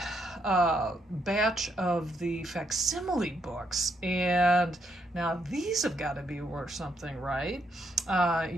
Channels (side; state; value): both; normal; correlation 0.76